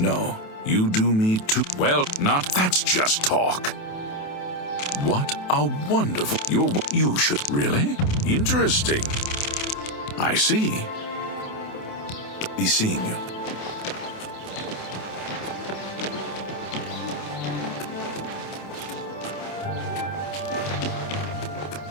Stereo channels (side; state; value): right; late; 28 ms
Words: you do me too well. Not that's just talk. What a wonderful. You should really? Interesting. I see. Be seeing you.